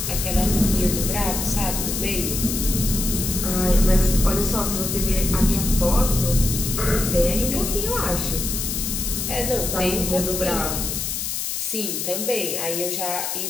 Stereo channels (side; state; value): left; noise; hiss, 3 dB below the sound